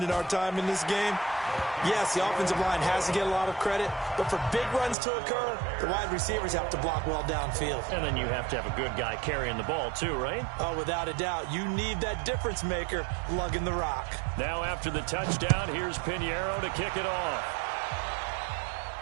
in our time in this game, yes, the offensive line has to get a lot of credit, but for big runs to occur, the wide receivers have to block well downfield. And then you have to have a good guy carrying the ball too, right? Oh, without a doubt. You need that difference maker lugging the rock. Now after the touchdown, here's Pinheiro to kick it off.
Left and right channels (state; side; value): drops out; left; at 5.0 s